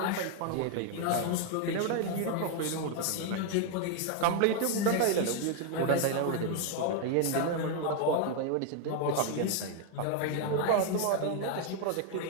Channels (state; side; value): different; both; correlation 0.00